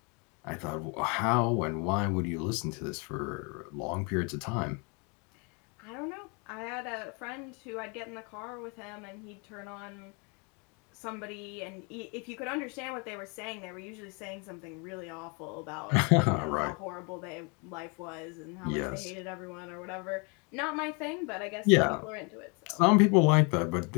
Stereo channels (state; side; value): quieter; right; 32.8 dB